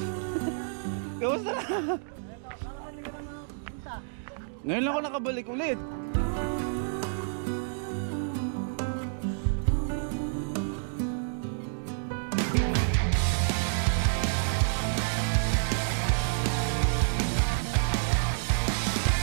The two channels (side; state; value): left; silent; digital silence